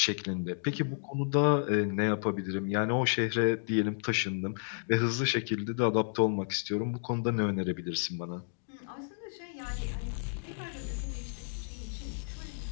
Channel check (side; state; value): right; silent; digital silence